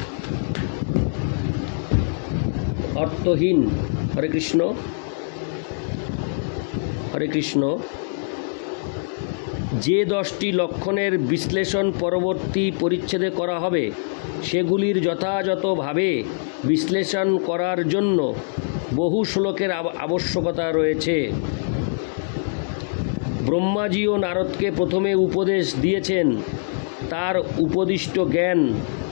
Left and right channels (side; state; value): right; silent; digital silence